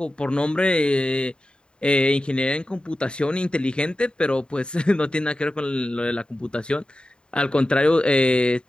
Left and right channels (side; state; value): right; late; 0.051 ms